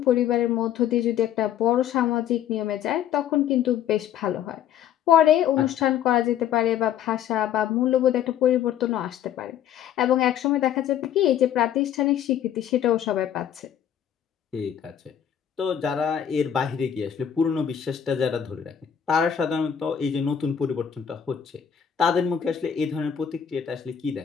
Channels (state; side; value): quieter; right; 9.5 dB